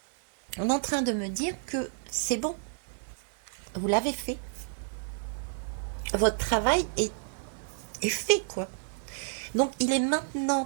On est en train de me dire que c'est bon. Vous l'avez fait. Votre travail est fait, quoi. Donc, il est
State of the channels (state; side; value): silent; left; digital silence